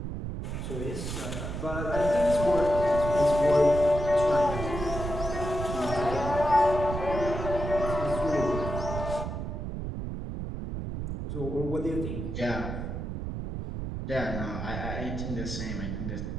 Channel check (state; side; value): noise; right; rumble, 5 dB below the sound